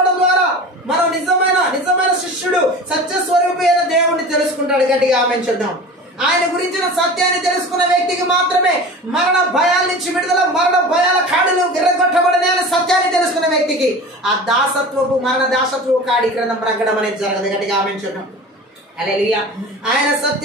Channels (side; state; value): both; normal; correlation 0.36